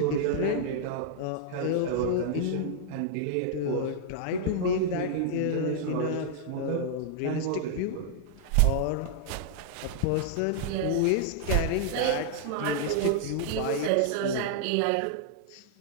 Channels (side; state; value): both; different; correlation -0.01